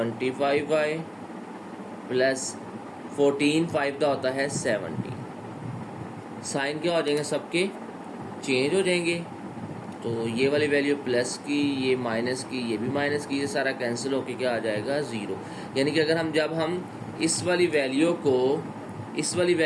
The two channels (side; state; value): both; identical; correlation 1.00